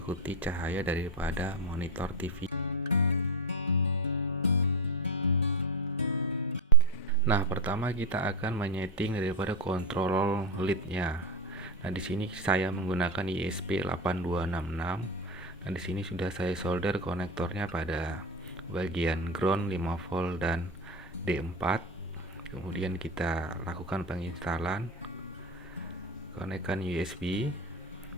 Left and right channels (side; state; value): both; normal; correlation 0.15